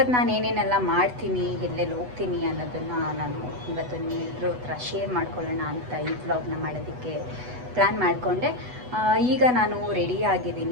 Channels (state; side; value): late; left; 8.1 ms